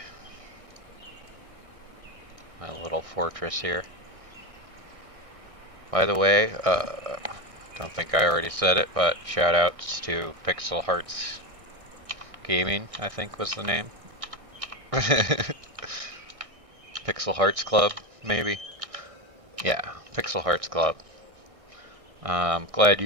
little fortress here. By the way, don't think I already said it, but shout outs to Pixel Hearts Gaming, I think was the name. Pixel Hearts Club, maybe? Yeah, Pixel Hearts Club. I'm glad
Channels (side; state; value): left; late; 1.6 ms